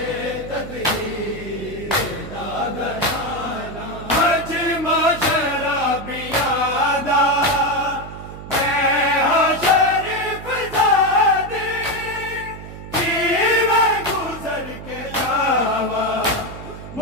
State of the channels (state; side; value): noise; right; hum, 13 dB below the sound